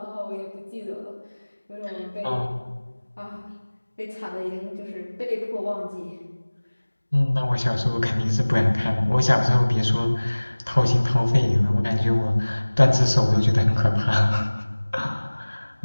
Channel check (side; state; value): both; inverted; correlation -1.00